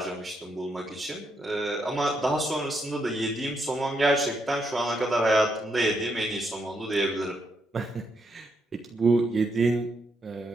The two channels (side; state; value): both; normal; correlation 0.79